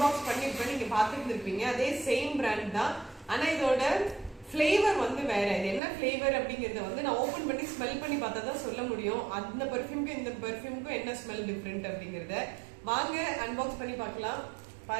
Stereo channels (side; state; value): left; drops out; at 5.8 s